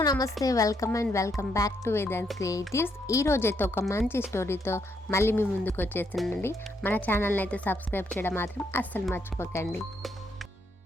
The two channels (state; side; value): normal; both; correlation 0.75